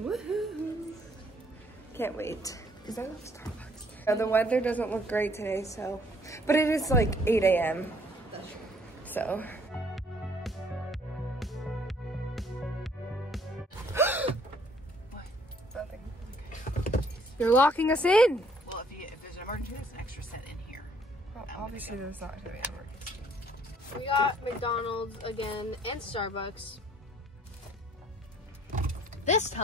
Can't wait, because I love Starbucks. The weather doesn't look great today, so, but it is like 8 a.m. So. What? Nothing. You're locking us in! Well, if there's an emergency, there's an extra set in here. Well, obviously there's not gonna be an emergency. We got McDonald's again and Starbucks. This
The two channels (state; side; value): normal; both; correlation 0.62